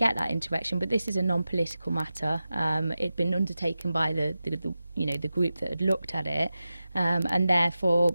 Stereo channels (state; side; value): inverted; both; correlation -0.93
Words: that interaction, but this is a non-political matter. It'd been undertaken by the group that had looked at it, and therefore,